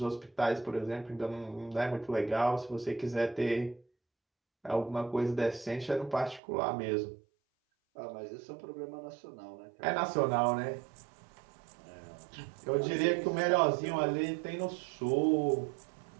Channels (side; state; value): left; drops out; at 6.4 s